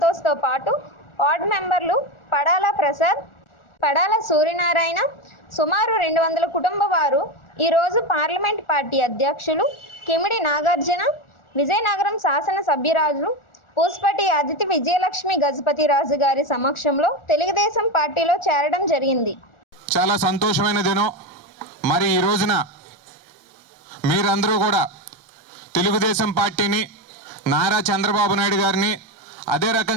పాటు వార్డు మెంబర్లు పడాల ప్రసాద్, పడాల సూర్యనారాయణ, సుమారు 200 కుటుంబ వారు ఈరోజు పార్లమెంట్ పార్టీ అధ్యక్షులు కిమిడి నాగార్జున, విజయనగరం శాసన సభ్యురాజు పూసపటి అదితి విజయలక్ష్మి గజపతి రాజు గారి సమక్షంలో తెలుగుదేశం పార్టీలో చేరడం జరిగింది. చాలా సంతోషమైన దినం. మరి ఈ రోజున మీరందరూ కూడా తెలుగుదేశం పార్టీని, నారా చంద్రబాబు నాయుడు గారిని, అదే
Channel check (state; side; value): late; right; 1.4 ms